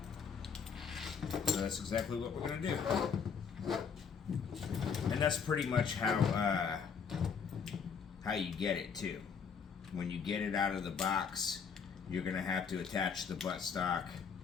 So that's exactly what we're going to do. And that's pretty much how you get it too. When you get it out of the box, you're going to have to attach the buttstock,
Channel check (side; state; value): right; quieter; 6.3 dB